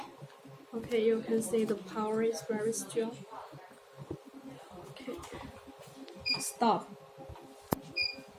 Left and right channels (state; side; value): identical; both; correlation 1.00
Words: Okay, you can see the power is very strong. Okay, stop.